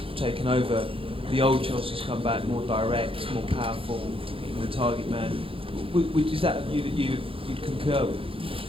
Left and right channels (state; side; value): late; left; 0.27 ms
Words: taken over, the old Chelsea's come back more direct, more powerful, hitting the target man. Is that a view that you'd concur with?